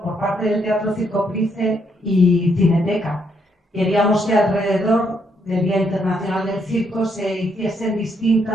por parte del Teatro Circo Price y Cineteca. Queríamos que alrededor del Día Internacional del Circo se hiciesen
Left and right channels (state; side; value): normal; both; correlation 0.74